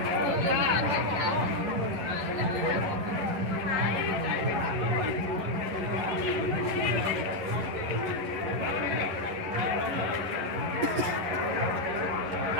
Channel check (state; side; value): late; left; 11 ms